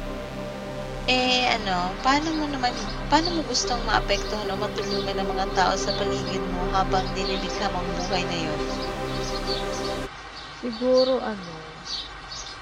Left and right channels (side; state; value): both; identical; correlation 1.00